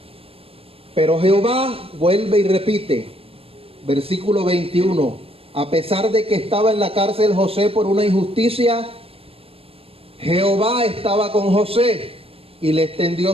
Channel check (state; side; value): late; left; 0.28 ms